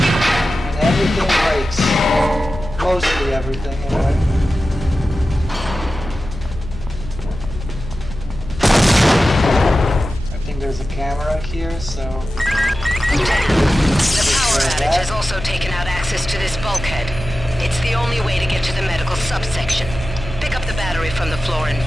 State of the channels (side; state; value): left; noise; hum, 12 dB below the sound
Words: And everything breaks. Mostly everything, anyway. I think there's a camera here, so... The power outage has also taken out access to this bulkhead. It's the only way to get to the medical subsection. Pick up the battery from the floor and